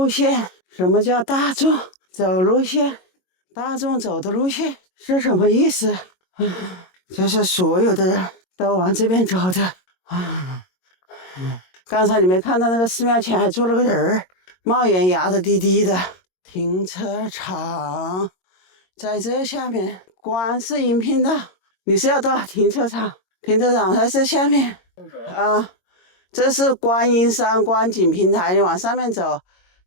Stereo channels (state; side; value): late; right; 22 ms